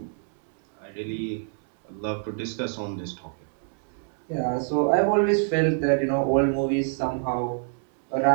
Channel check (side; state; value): left; silent; 61 dB below the other